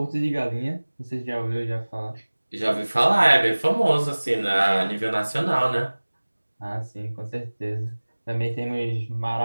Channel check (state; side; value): inverted; both; correlation -1.00